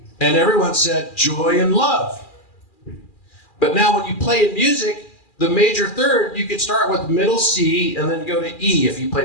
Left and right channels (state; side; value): late; right; 2.4 ms